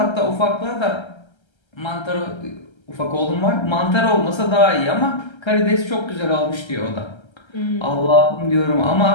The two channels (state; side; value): late; right; 1.3 ms